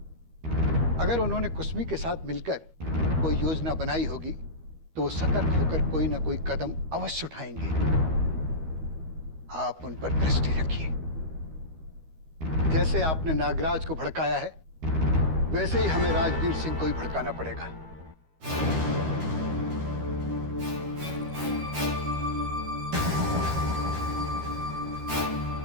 अगर उन्होंने कुसुमी के साथ मिलकर कोई योजना बनाई होगी तो वो सतर्क होकर कोई ना कोई कदम अवश्य उठाएंगे। आप उन पर दृष्टि रखिए। जैसे आपने नागराज को भड़काया है, वैसे ही हमें राजवीर सिंह को ही भड़काना पड़ेगा।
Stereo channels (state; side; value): late; left; 13 ms